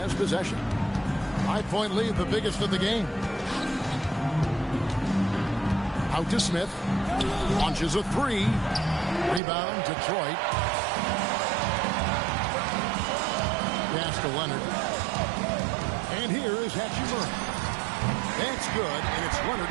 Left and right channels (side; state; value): left; drops out; at 9.4 s